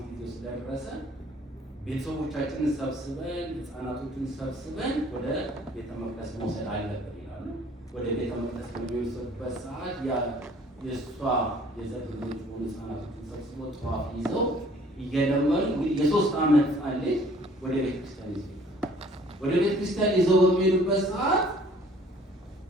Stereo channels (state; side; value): normal; both; correlation 0.56